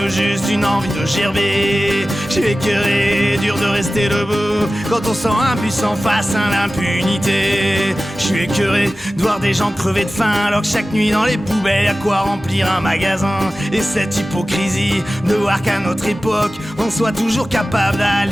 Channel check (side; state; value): both; normal; correlation 0.96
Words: juste une envie de gerber. Je suis écœuré, dur de rester debout quand on sent impuissant face à l'impunité. Je suis écœuré de voir des gens crever de faim alors que chaque nuit dans les poubelles y'a quoi remplir un magasin. Et cette hypocrisie de voir qu'à notre époque on soit toujours capable